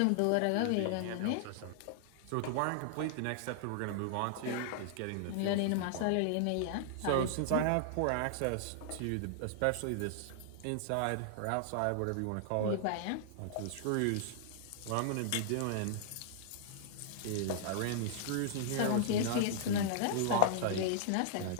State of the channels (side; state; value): both; different; correlation -0.01